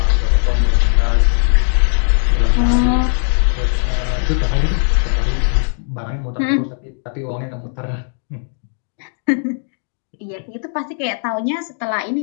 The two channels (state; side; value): silent; right; digital silence